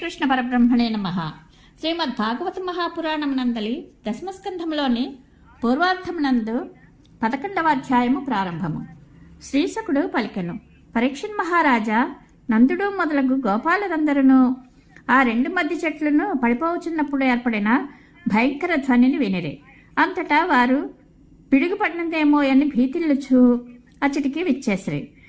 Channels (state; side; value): identical; both; correlation 1.00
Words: పరబ్రహ్మణే నమః. శ్రీమద్ భాగవత మహాపురాణమునందలి దశమస్కంధంలోని పూర్వార్ధమునందు 11వ అధ్యాయము ప్రారంభము. శ్రీశకుడు పలికెను, పరీక్షణ్ మహారాజా, నందుడు మొదలగు గోపాలురందరూ ఆ రెండు మధ్య చెట్లను పడిపోవచ్చున్నప్పుడు ఏర్పడిన భయంకర ధ్వనిని వినిరే. అంతటా వారు పిడుగుపడినదేమో అని భీతిల్లుచు అచ్చటికి విచ్చేసిరి.